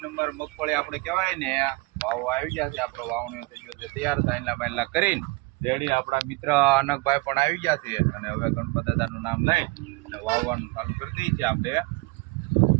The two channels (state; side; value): quieter; left; 25.3 dB